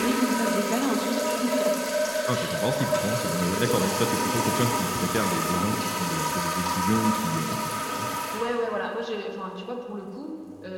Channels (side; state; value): both; identical; correlation 1.00